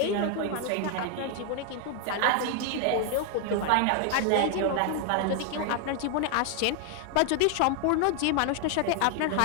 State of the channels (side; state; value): both; different; correlation 0.00